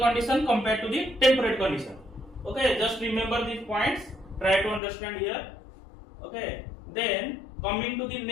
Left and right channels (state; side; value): drops out; right; at 4.8 s